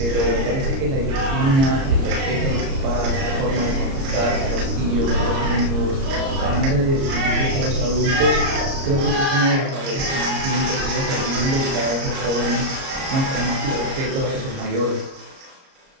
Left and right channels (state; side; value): late; left; 30 ms